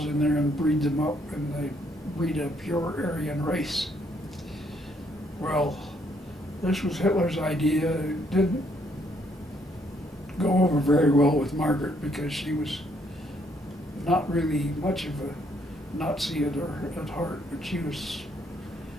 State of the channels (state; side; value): normal; both; correlation 0.70